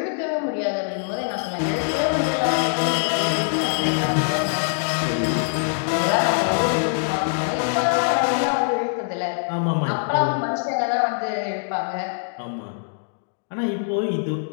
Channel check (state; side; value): silent; right; digital silence